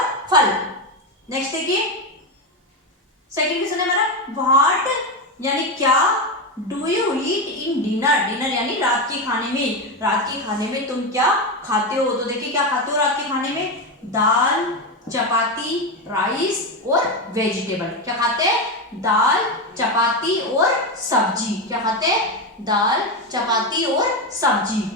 फल। नेक्स्ट देखिए सेकंड क्वेश्चन है हमारा व्हाट यानी क्या do you eat in dinner, dinner यानी रात के खाने में, रात के खाने में तुम क्या खाते हो। तो देखिए क्या खाते हो रात के खाने में, दाल, चपाती, राइस और वेजिटेबल। क्या खाते हैं, दाल, चपाती और सब्जी। क्या खाते हैं, दाल, चपाती और सब्जी।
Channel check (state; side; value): normal; both; correlation 0.13